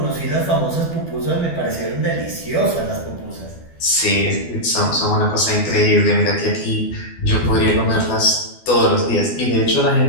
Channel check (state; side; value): late; right; 12 ms